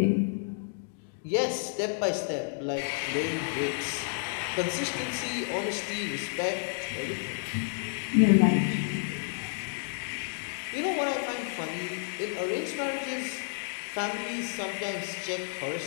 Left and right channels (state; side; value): silent; right; digital silence